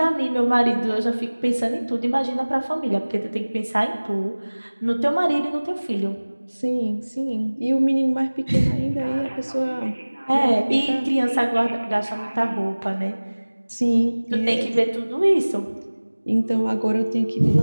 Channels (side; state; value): both; inverted; correlation -1.00